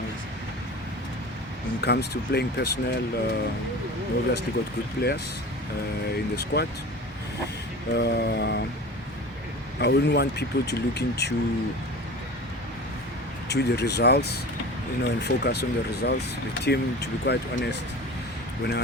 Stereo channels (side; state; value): both; normal; correlation 0.35